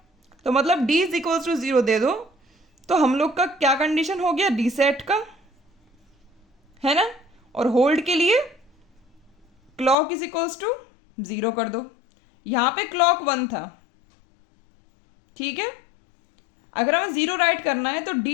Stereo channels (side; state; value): right; drops out; at 10.0 s